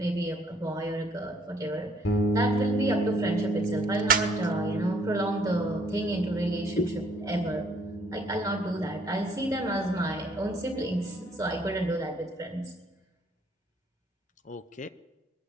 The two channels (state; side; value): normal; both; correlation 0.64